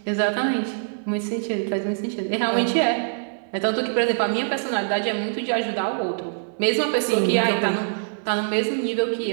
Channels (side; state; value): left; silent; digital silence